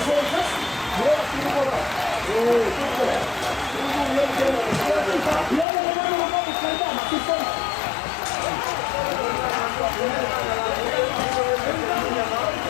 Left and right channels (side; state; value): right; drops out; at 5.7 s